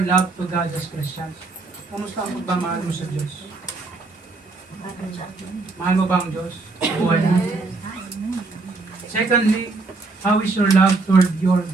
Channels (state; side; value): quieter; left; 3.7 dB